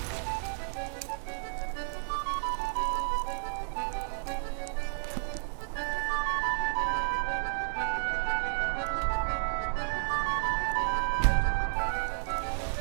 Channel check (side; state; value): left; silent; digital silence